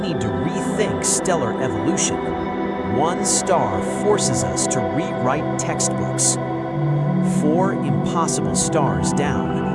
to rethink stellar evolution. One star forces us to rewrite textbooks. 4 impossible stars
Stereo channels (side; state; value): both; identical; correlation 1.00